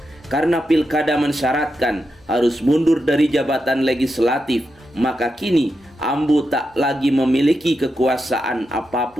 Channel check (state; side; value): normal; both; correlation 0.87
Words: Karena pilkada mensyaratkan harus mundur dari jabatan legislatif, maka kini Ambu tak lagi memiliki kekuasaan